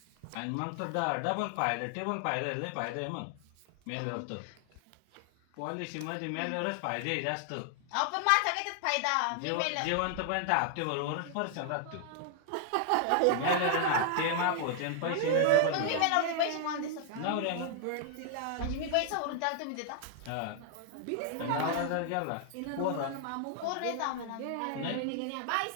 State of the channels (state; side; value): different; both; correlation 0.00